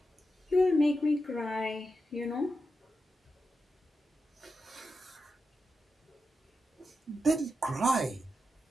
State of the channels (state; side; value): normal; both; correlation 0.89